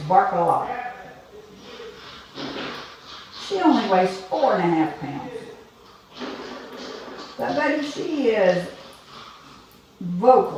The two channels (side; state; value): both; identical; correlation 1.00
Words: Bark a Lot. She only weighs 4.5 pounds. But buddy, she is